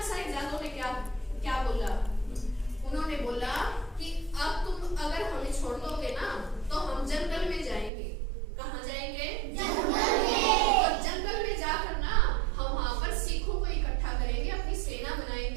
साहिबजादों ने क्या बोला? उन्होंने बोला कि अब तुम अगर हमें छोड़ दोगे ना, तो हम जंगल में जाएंगे। कहाँ जाएंगे? जंगल में। और जंगल में जाकर ना हम वहां पर सिखों को इकट्ठा करेंगे, अपनी सेना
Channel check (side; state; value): left; drops out; at 7.9 s